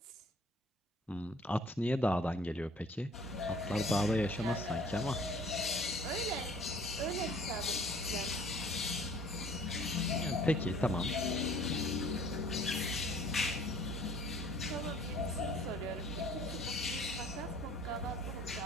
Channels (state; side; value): normal; both; correlation 0.54